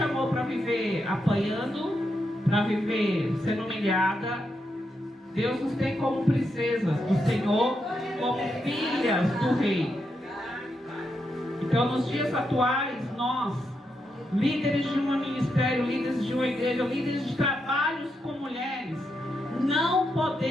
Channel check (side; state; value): both; normal; correlation 0.83